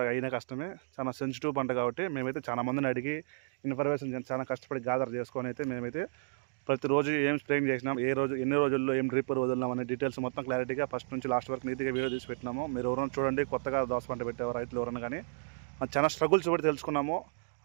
అయినా కష్టమే. చాలా సెన్సిటివ్ పంట కాబట్టి మేమైతే చాలా మందిని అడిగి ఇన్ఫర్మేషన్ చాలా కష్టపడి గ్యాదర్ చేసుకొని అయితే మేమైతే ప్రతిరోజు ఏం స్ప్రేయింగ్ చేసినాం, ఏ రోజు ఎన్ని రోజుల్లో ఏం డ్రిప్ వదిలినాం అనే డీటెయిల్స్ మొత్తం క్లారిటీగా ఫస్ట్ నుంచి లాస్ట్ వరకు నీట్గా వీడియో తీసి పెట్టినాము. మీరు ఎవరైనా చూడండి, కొత్తగా దోస పంట పెట్టేవారు రైతులు ఎవరైనా కానీ చాలా స్ట్రగుల్స్ పడి తెలుసుకున్నాము.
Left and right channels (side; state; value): left; silent; digital silence